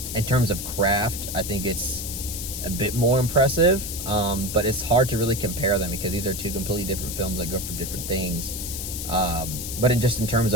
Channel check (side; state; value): left; noise; hiss, 6 dB below the sound